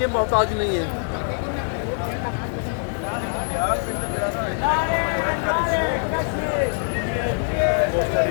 मोहताज नहीं है।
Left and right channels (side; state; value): right; silent; 63 dB below the other